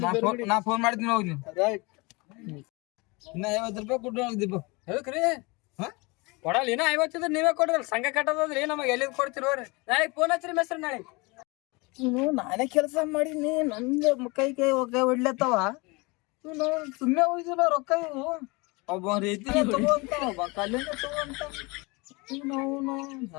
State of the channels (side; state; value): right; quieter; 26.5 dB